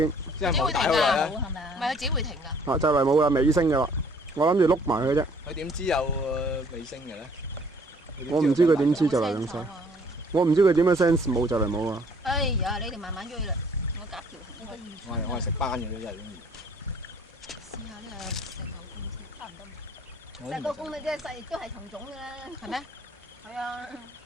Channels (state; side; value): normal; both; correlation 0.59